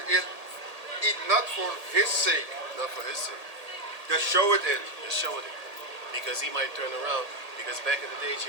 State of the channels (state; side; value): late; left; 1.8 ms